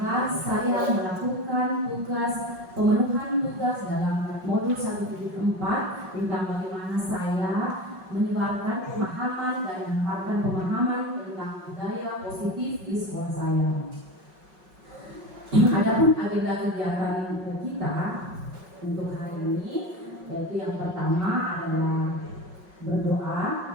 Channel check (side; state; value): left; late; 5.4 ms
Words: saya melakukan tugas pemenuhan tugas dalam modul 174 tentang bagaimana saya menyebarkan pemahaman dan menyebarkan pemahaman tentang budaya positif di sekolah saya. Adapun agenda kegiatan kita untuk hari ini, yaitu yang pertama adalah berdoa,